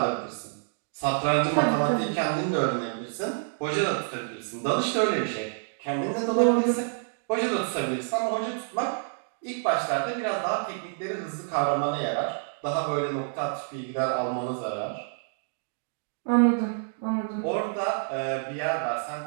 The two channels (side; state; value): left; silent; digital silence